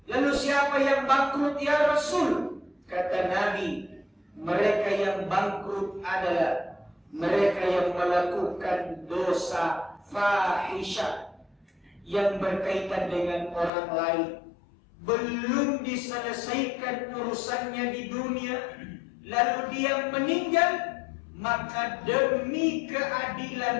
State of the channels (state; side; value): drops out; right; at 13.7 s